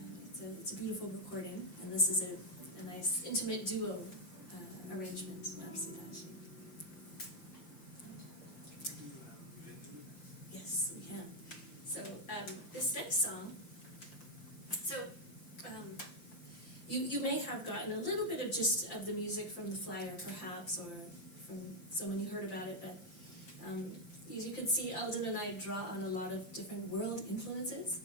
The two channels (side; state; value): right; late; 5.8 ms